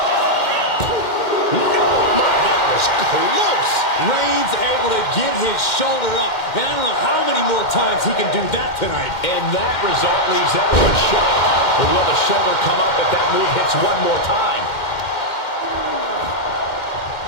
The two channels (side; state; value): right; late; 2.1 ms